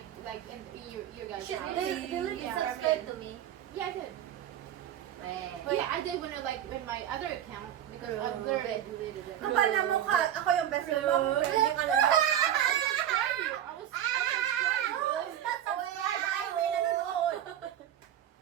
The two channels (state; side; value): quieter; left; 11.0 dB